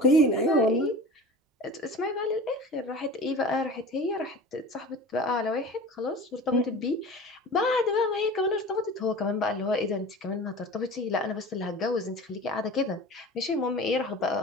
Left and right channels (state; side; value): normal; both; correlation 0.37